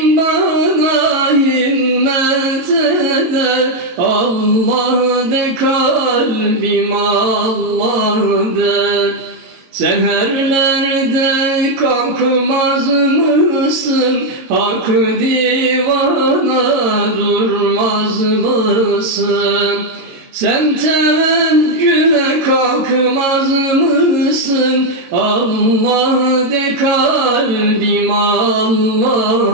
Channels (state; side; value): late; left; 22 ms